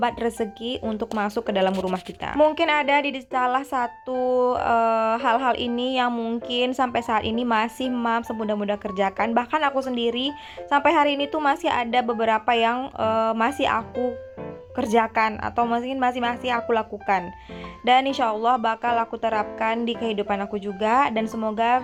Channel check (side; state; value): both; identical; correlation 1.00